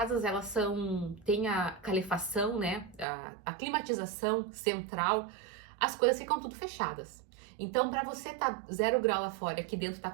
elas tem a calefação, né, a climatização central, as coisas ficam tudo fechadas. Então, para você tá 0 grau lá fora e aqui dentro tá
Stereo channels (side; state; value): left; drops out; at 3.1 s